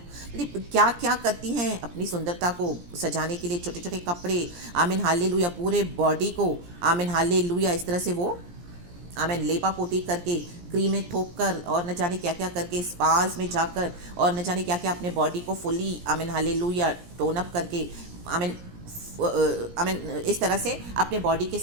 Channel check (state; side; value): late; left; 17 ms